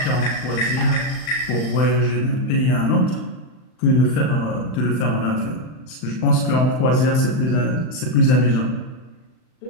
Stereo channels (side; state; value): right; late; 39 ms